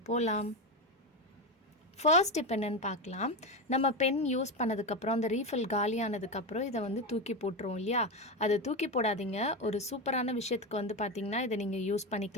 போலாம். ஃபர்ஸ்ட் இப்போ என்னென்னு பார்க்கலாம். நம்ம பென் யூஸ் பண்ணதுக்கப்புறம் அந்த ரீஃபில் காலியானதுக்கப்புறம் இதை வந்து தூக்கி போட்டுருவோம் இல்லையா? அதை தூக்கி போடாதீங்க. ஒரு சூப்பரான விஷயத்துக்கு வந்து பார்த்திங்கன்னா இதை நீங்கள் யூஸ்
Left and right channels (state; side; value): normal; both; correlation 0.15